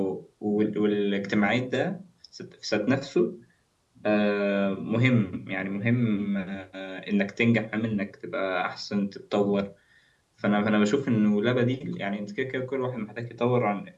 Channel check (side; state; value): both; identical; correlation 1.00